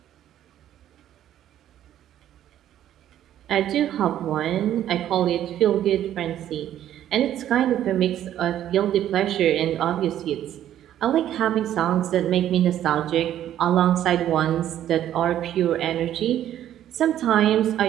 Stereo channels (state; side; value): quieter; left; 11.5 dB